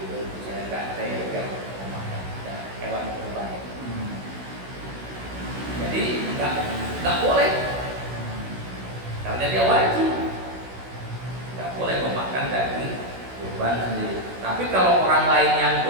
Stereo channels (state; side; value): late; left; 16 ms